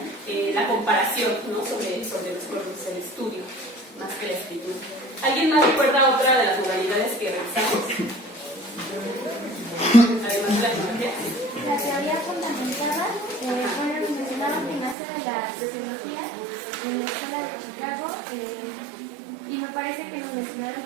la comparación, ¿no? sobre los pueblos, el estudio, más que la escritura. ¿Alguien más recuerda otra de las modalidades que revisamos? Además de la etnología. La teoría fundamentada, mencionaron que nace de la sociología en la escuela de Chicago, y me parece que nos mencionaron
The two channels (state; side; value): drops out; left; at 15.0 s